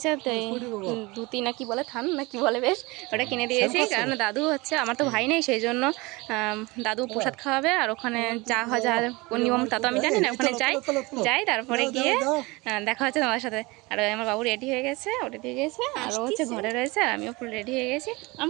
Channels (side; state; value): left; quieter; 23.8 dB